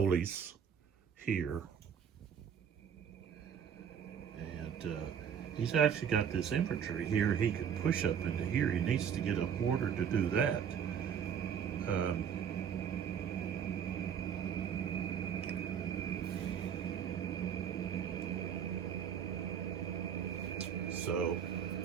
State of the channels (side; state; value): left; quieter; 8.0 dB